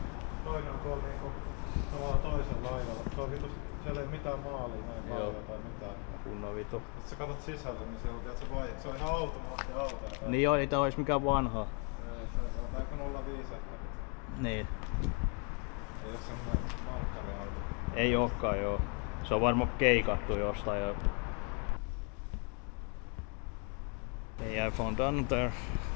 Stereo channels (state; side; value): quieter; right; 37.3 dB